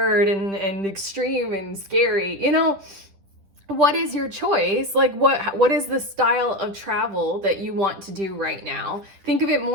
and extreme and scary. You know, what is your choice? Like what is the style of travel that you want to do right now? Think of it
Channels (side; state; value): left; late; 10 ms